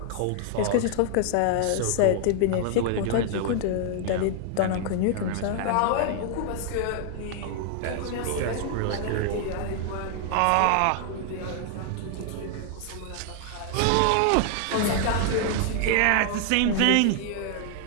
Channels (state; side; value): different; both; correlation 0.00